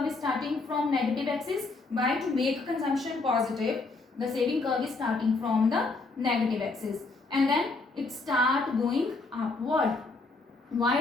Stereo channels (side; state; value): right; quieter; 3.7 dB